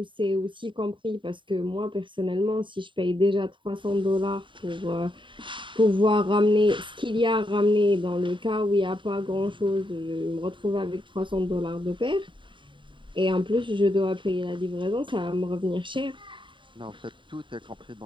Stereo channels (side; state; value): left; late; 0.24 ms